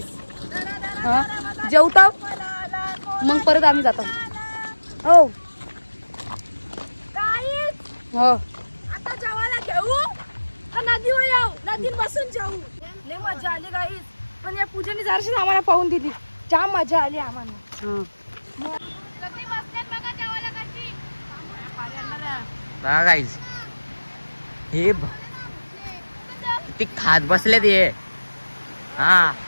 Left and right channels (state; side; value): inverted; both; correlation -1.00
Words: हा जेवता मग परत आम्ही जातो हो हो आता जेवायला घेऊ का नदीवर जाऊ नदीत बसून जाऊ लय मजा आली गाईस पण या पूजेने जराशी आम्हाला पाहून दिली जाम मजा आली आम्हाला हा. बघा गाईज हे किती खात बसले ते हा